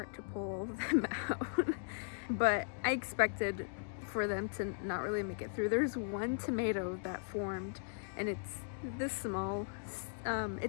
to pull all of them out. But I expected for them to not really make it through. There's one tomato that formed, and it's this small.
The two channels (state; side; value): silent; right; digital silence